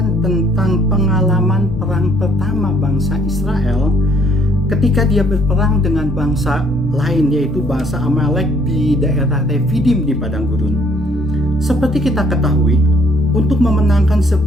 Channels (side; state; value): both; normal; correlation 0.64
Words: tentang pengalaman perang pertama bangsa Israel ketika dia berperang dengan bangsa lain, yaitu bangsa Amalek di daerah Refidim di padang gurun. Seperti kita ketahui, untuk memenangkan